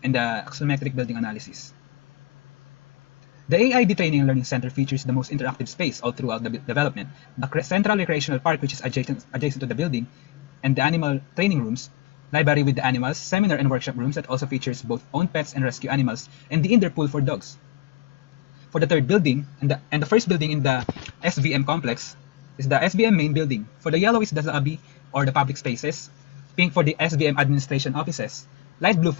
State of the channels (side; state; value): right; quieter; 17.3 dB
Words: and the axonometric building analysis. The AI Training and Learning Center features the most interactive space all throughout the development. The central recreational park, which is adjacent to the building, and the animal training rooms, library with the animals, seminar and workshop rooms that also features both own pets and rescue animals, and the indoor pool for dogs. For the third building, and the first building in the SVM complex, is the SVM main building. For the yellow is the lobby or the public spaces, pink for the SVM administration offices, light blue